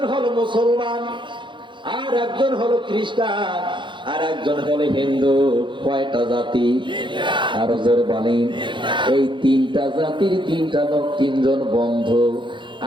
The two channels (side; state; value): left; late; 0.23 ms